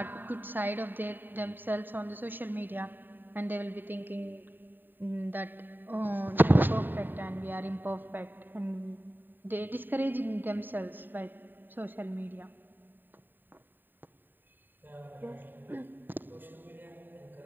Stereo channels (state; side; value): late; left; 0.092 ms